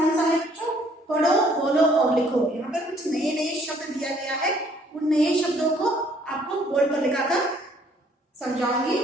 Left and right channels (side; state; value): both; normal; correlation 0.62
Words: सा है बच्चों? पढ़ो, बोलो और लिखो। यहाँ पर कुछ नए नए शब्द दिया गया है, उन नए शब्दों को आपको बोर्ड पर लिखाकर समझाऊंगी।